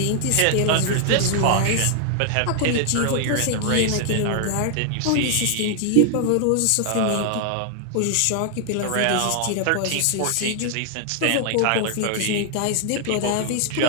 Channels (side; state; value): both; different; correlation 0.00